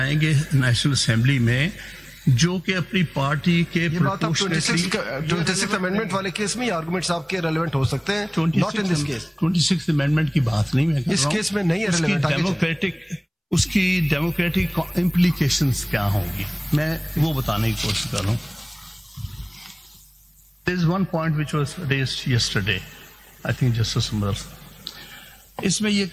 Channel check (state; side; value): identical; both; correlation 1.00